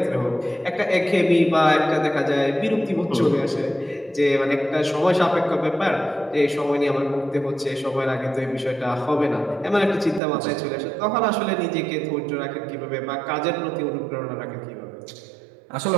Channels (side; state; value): left; drops out; at 10.2 s